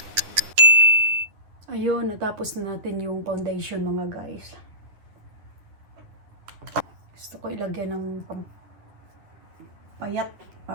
Ayun, natapos na natin yung foundation mga guys. Gusto ko ilagyan ng payat.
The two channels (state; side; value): late; left; 10 ms